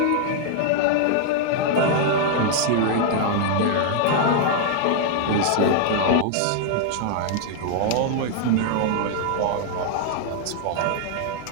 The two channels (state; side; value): different; both; correlation 0.00